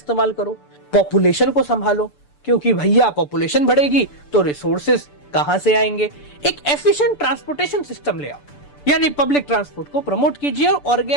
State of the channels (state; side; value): late; right; 6.9 ms